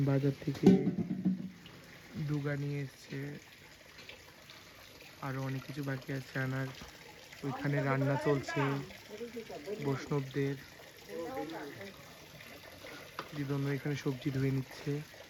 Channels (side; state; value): both; identical; correlation 1.00